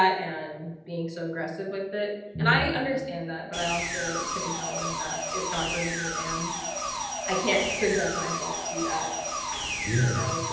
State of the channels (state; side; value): identical; both; correlation 1.00